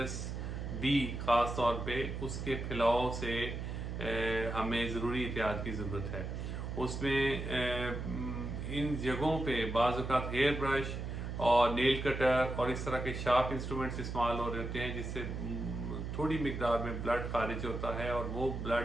بی خاص طور پہ اس کے پھیلاؤ سے ہمیں ضروری احتیاط کی ضرورت ہے. اس میں ان جگہوں پہ بعض اوقات ہیئر برش اور نیل کٹر اور اس طرح کے شارپ انسٹرومنٹس استعمال ہو رہے ہوتے ہیں جس سے تھوڑی مقدار میں بلڈ خارج ہوتا ہے اور وہ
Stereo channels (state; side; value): noise; right; hum, 5 dB below the sound